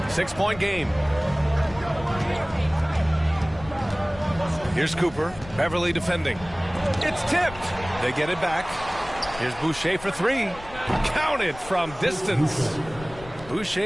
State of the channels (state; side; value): noise; left; rumble, 16 dB below the sound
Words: 6-point game. Here's Cooper. Beverly defending. It's tipped. They get it back. Here's Boucher for three. Counted from distance.